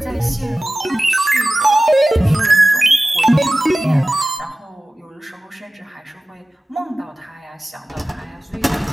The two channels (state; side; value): normal; both; correlation 0.97